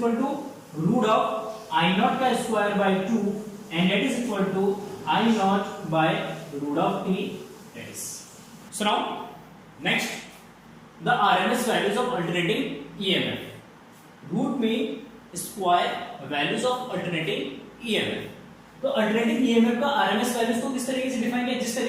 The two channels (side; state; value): both; identical; correlation 1.00